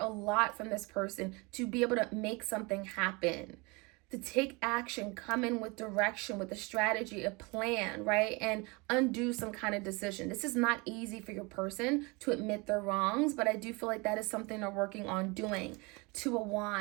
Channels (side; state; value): left; quieter; 27.3 dB